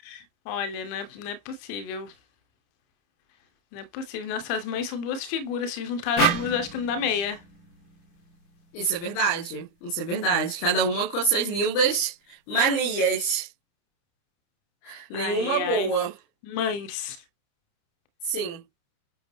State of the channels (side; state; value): right; late; 30 ms